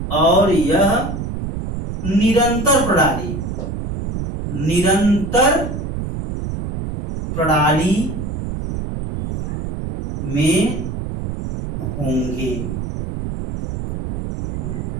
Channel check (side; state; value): right; noise; rumble, 5 dB below the sound